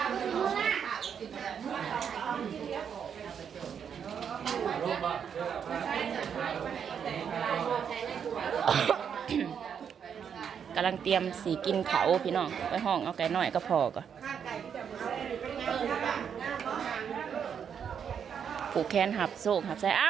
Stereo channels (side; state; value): left; quieter; 7.6 dB